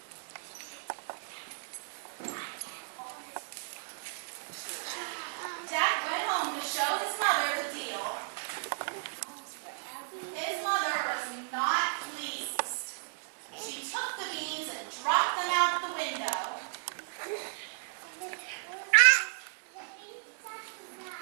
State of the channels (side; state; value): left; silent; 55 dB below the other